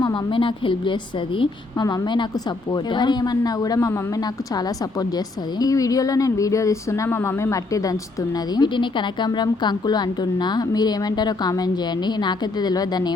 మా మమ్మీ నాకు హెల్ప్ చేస్తుంది. మా మమ్మీ నాకు సపోర్ట్. ఎవరేమన్నా కూడా మా మమ్మీ నాకు చాలా సపోర్ట్ చేస్తుంది. ఈ వీడియోలో నేను వీడియో తీస్తున్నా, మా మమ్మీ మట్టి దంచుతున్నది. వీటిని కనకాంబరం కంకులు అంటున్నా. మీరు ఏమంటారో కామెంట్ చేయండి. నాకైతే తెలియదు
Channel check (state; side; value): quieter; right; 3.3 dB